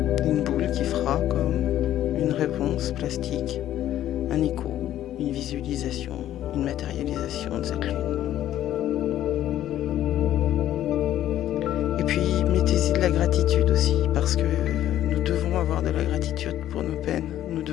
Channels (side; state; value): right; quieter; 12.3 dB